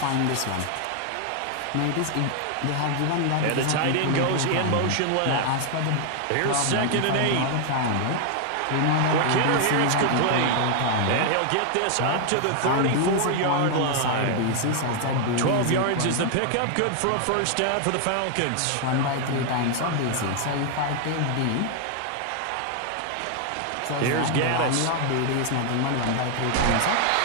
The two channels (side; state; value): both; different; correlation 0.00